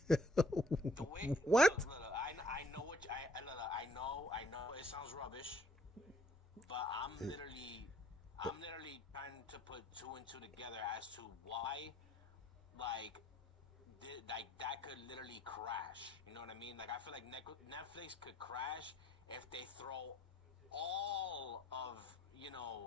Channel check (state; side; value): normal; both; correlation 0.60